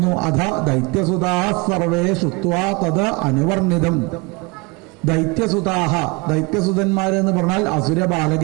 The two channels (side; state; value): left; quieter; 27.6 dB